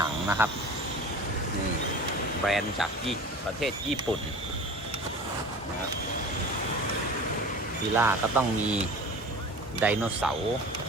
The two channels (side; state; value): both; normal; correlation 0.37